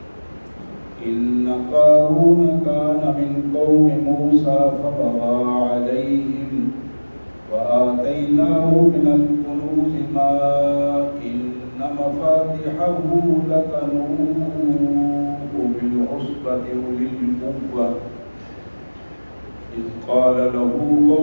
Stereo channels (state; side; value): inverted; both; correlation -1.00